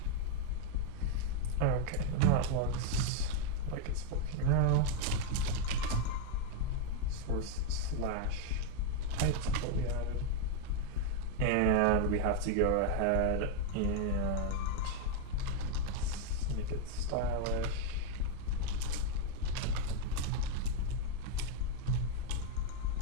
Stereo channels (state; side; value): different; both; correlation 0.01